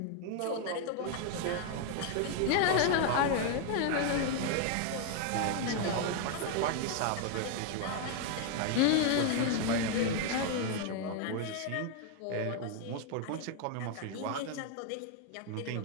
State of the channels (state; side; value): different; both; correlation 0.00